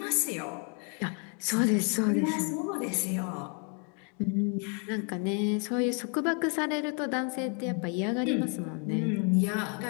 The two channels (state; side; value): quieter; right; 38.6 dB